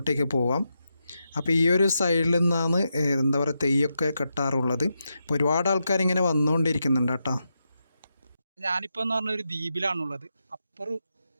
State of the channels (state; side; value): inverted; both; correlation -0.86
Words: പോവാം. അപ്പോൾ ഈ ഒരു സൈഡിൽ നിന്നാണ് എന്താ പറയുക തെയ്യമൊക്കെ കെട്ടാറുള്ളത്. അപ്പോൾ ഒരുപാട് ആൾക്കാരിങ്ങനെ വന്നുകൊണ്ടിരിക്കുന്നുണ്ട് കേട്ടോ. ഞാനിപ്പോൾ എന്ന് പറഞ്ഞ ഒരു ദ്വീപിലാണുള്ളത്. അപ്പുറം